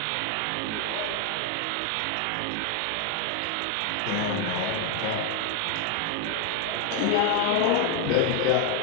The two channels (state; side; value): different; both; correlation 0.01